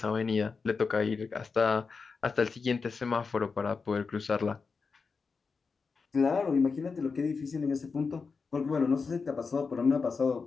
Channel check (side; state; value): right; quieter; 4.9 dB